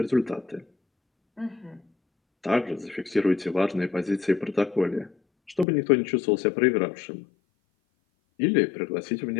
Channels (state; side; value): drops out; right; at 5.7 s